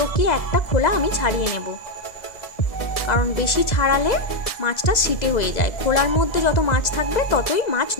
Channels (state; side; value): late; right; 2.0 ms